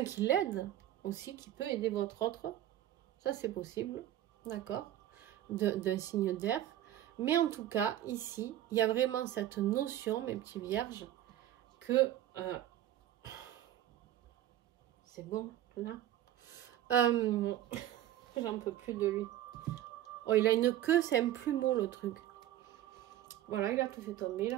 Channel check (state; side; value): quieter; left; 12.7 dB